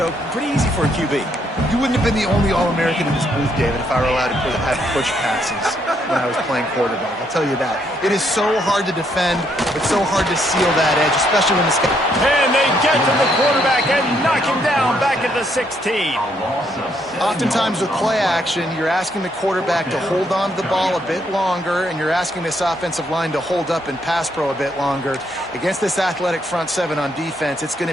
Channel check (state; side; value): normal; both; correlation 0.73